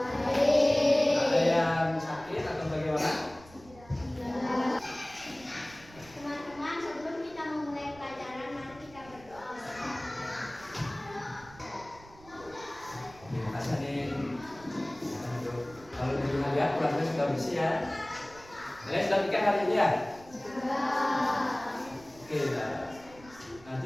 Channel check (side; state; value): right; noise; rumble, 22 dB below the sound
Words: Ada yang sakit atau bagaimana? Teman-teman, sebelum kita memulai pelajaran, mari kita berdoa. Terima kasih Anin. Kalau di rumah lihat keluarga sudah bersih ya. Kalian sudah pikir hari ini ya? Oke, nanti